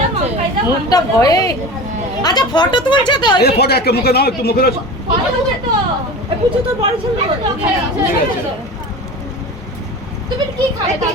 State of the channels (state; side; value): normal; both; correlation 0.33